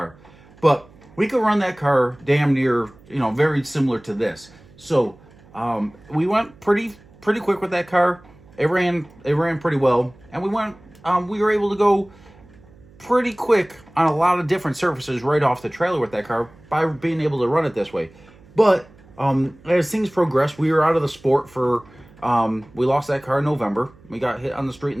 But we could run that car damn near, very similar to this. So we went pretty quick with that car. It ran pretty well, and we were able to go pretty quick on a lot of different surfaces right off the trailer with that car by being able to run it this way. But as things progressed, we were out of the sport for we lost that car in November. We got hit on the street in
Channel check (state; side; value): noise; right; hum, 25 dB below the sound